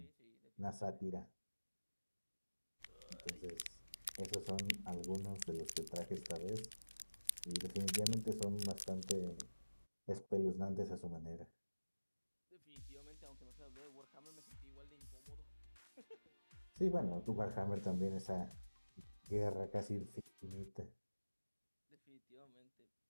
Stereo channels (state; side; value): inverted; both; correlation -1.00